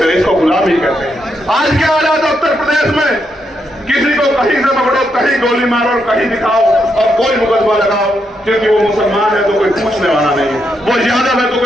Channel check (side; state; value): both; normal; correlation 0.80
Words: रहे, इसको गुलामी कहते हैं। आज के हालात उत्तर प्रदेश में, किसी को कहीं से पकड़ो, कहीं गोली मारो और कहीं दिखाओ और कोई मुकदमा लगाओ, क्योंकि वो मुसलमान है तो कोई पूछने वाला नहीं है, वो यादव है तो